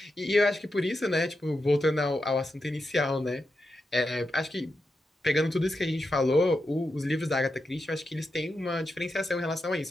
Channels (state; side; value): normal; both; correlation 0.87